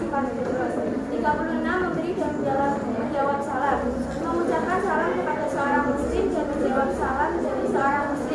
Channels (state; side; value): identical; both; correlation 1.00